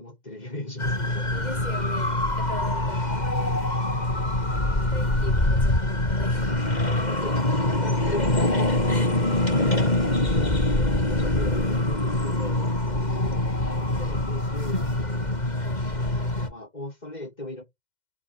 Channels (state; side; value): late; right; 2.1 ms